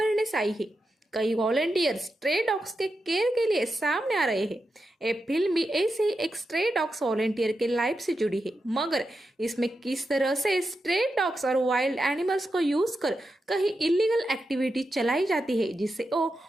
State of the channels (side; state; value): both; normal; correlation 0.88